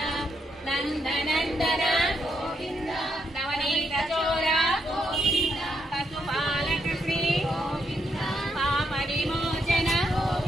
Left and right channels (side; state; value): both; normal; correlation 0.79